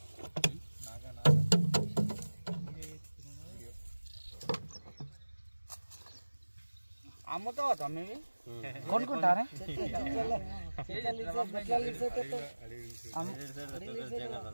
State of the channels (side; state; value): both; inverted; correlation -1.00